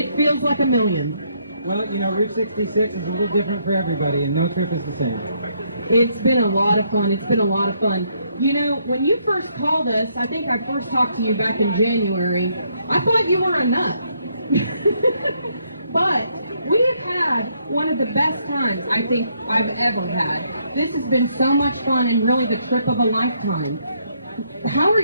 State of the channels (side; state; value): both; inverted; correlation -0.72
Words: feels like a million. Well, you know, Route 66 is a little different for everybody, and no trip is the same. It's been a lot of fun. It's been a lot of fun. You know, when you first called us, I think I first talked to you back in January, I thought you were a nut. But we have had one of the best times I think I've ever had. This has been so much fun and really the trip of a lifetime. How are